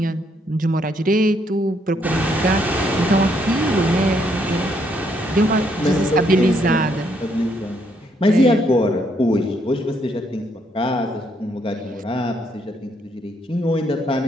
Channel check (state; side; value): normal; both; correlation 0.72